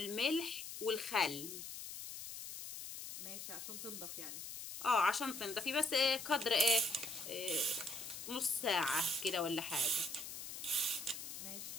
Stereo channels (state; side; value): noise; left; hiss, 8 dB below the sound